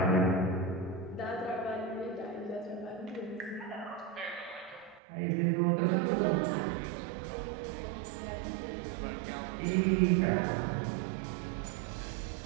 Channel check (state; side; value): drops out; left; at 5.0 s